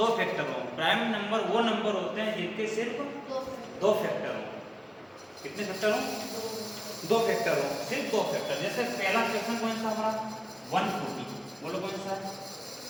फैक्टर हो। प्राइम नंबर वो नंबर होते हैं जिनके सिर्फ दो फैक्टर हो। कितने फैक्टर हो? दो फैक्टर हो, सिर्फ दो फैक्टर। जैसे पहला क्वेश्चन कौन सा हमारा 140, बोलो कौन सा?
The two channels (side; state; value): both; identical; correlation 1.00